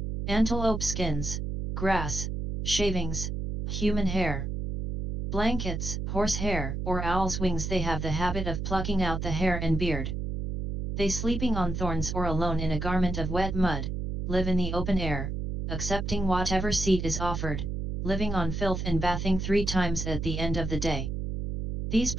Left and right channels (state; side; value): noise; right; hum, 2 dB below the sound